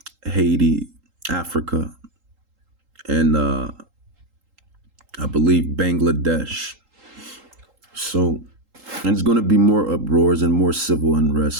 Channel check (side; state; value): left; late; 3.8 ms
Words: Haiti, Africa, and I believe Bangladesh. So, and it's going to be more uproars and more civil